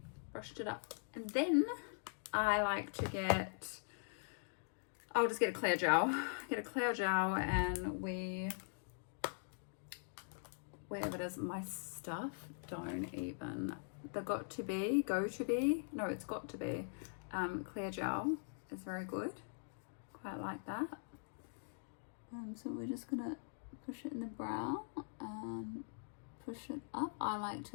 And then I like to get, I'll just get a clear gel. And wherever it is, my stuff don't even, the got to be clear gel is very good. Quite like that. So we're just gonna push it in the brow and push it up. I like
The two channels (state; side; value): silent; right; digital silence